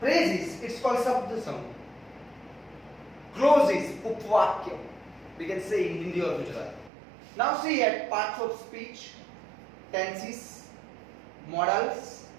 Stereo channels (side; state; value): left; drops out; at 6.9 s